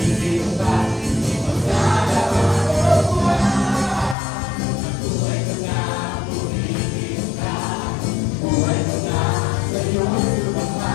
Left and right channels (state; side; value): drops out; right; at 4.2 s